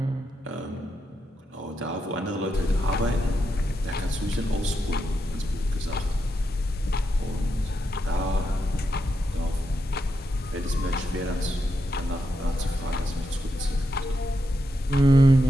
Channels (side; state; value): both; normal; correlation 0.84